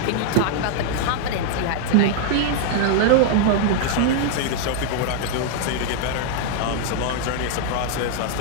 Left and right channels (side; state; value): both; different; correlation -0.01